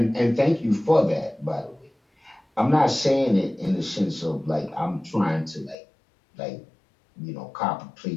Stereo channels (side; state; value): right; drops out; at 5.8 s